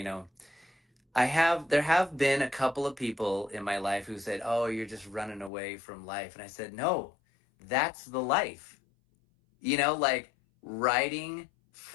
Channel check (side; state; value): right; drops out; at 5.5 s